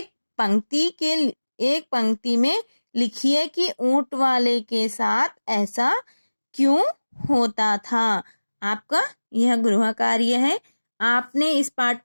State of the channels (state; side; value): inverted; both; correlation -1.00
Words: पंक्ति में लिखिए कि ऊंट वाले के साथ ऐसा क्यों होता था। आपका यह गृह कार्य है। आपने इस पाठ